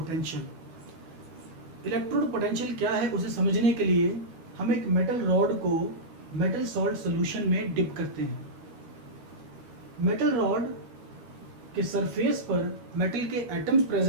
इलेक्ट्रोड पोटेंशियल क्या है उसे समझने के लिए हम एक मेटल रॉड को मेटल सॉल्ट सॉल्यूशन में डिप करते हैं। मेटल रॉड के सरफेस पर मेटल के एटम्स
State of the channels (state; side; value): late; left; 12 ms